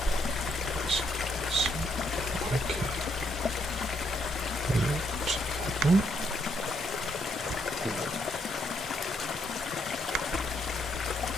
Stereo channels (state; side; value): normal; both; correlation 0.74